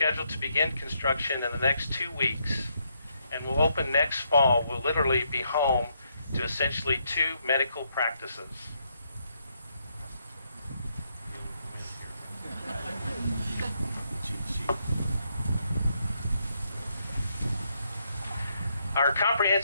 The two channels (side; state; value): both; inverted; correlation -0.76